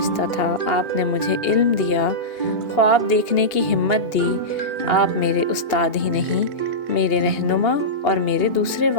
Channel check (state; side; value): late; right; 2.8 ms